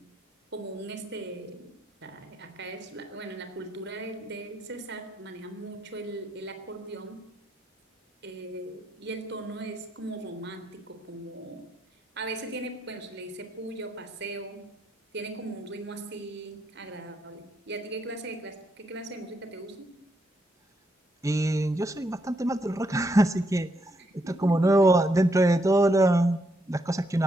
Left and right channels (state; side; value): normal; both; correlation 0.77